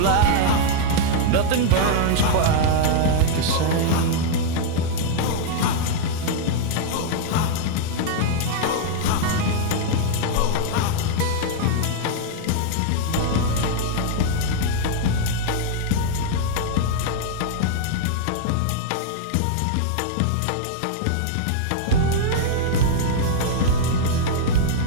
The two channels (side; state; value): both; different; correlation -0.01